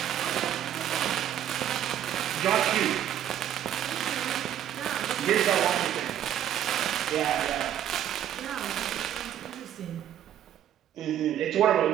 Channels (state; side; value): quieter; left; 10.9 dB